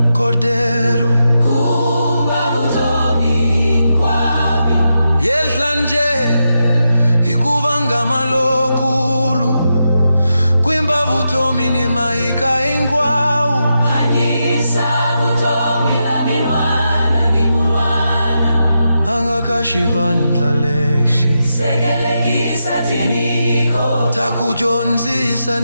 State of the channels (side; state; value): both; inverted; correlation -0.86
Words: Kordero, kumba vutomi hinkwabyo. yehla nje hikuva ngama lokulu, kwimba vutomi ni mahika hinkwawu. hanyisa vutomi la minwana ni munwana, Anga ka xivandla lexi sekelekisa tiniko, ta ku dyondzisa